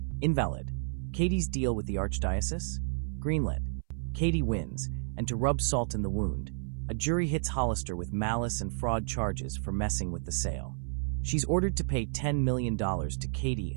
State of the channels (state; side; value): silent; left; 57 dB below the other